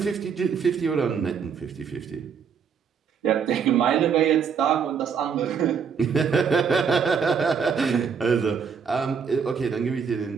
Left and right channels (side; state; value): left; quieter; 6.6 dB